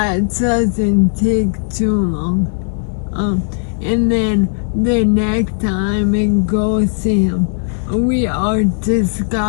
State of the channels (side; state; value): right; silent; digital silence